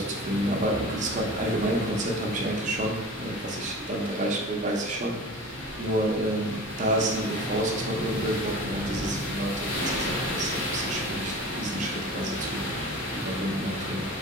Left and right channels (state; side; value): normal; both; correlation 0.37